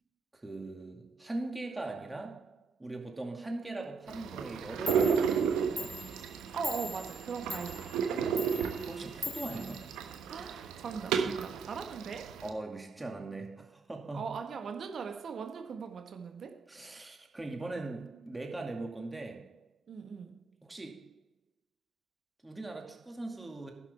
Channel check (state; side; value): quieter; left; 5.0 dB